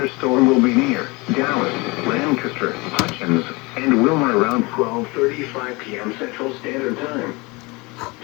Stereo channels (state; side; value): quieter; right; 25.7 dB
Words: will be near Dallas, Lancaster, Hutchins, and Wilmer around 12:35 p.m. Central Standard Time.